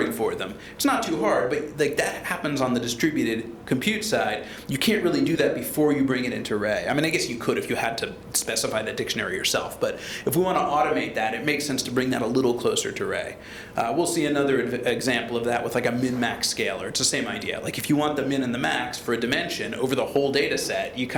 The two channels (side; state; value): both; identical; correlation 1.00